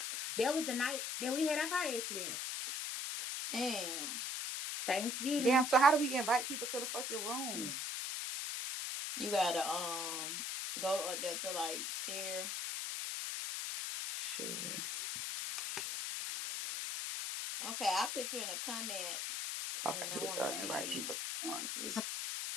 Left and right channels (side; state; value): left; noise; hiss, 2 dB below the sound